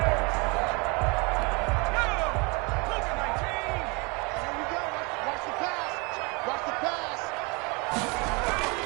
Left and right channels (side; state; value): left; quieter; 29.4 dB